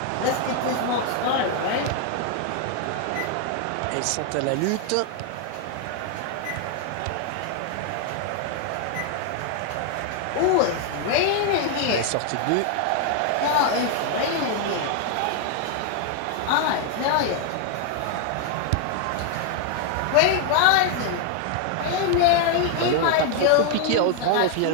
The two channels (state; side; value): different; both; correlation 0.00